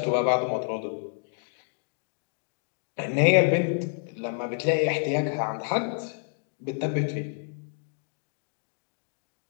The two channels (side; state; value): right; silent; digital silence